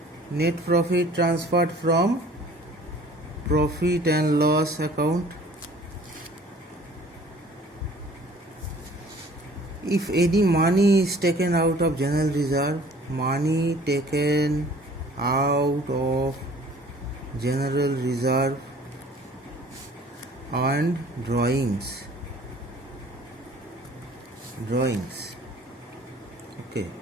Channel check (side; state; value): both; normal; correlation 0.51